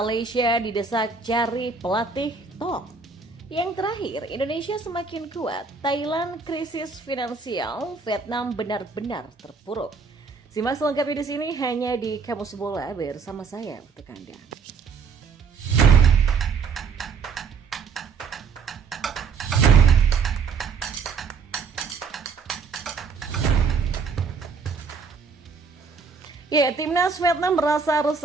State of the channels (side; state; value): left; quieter; 5.3 dB